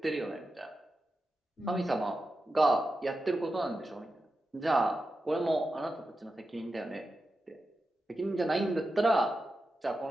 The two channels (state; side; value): normal; both; correlation 0.91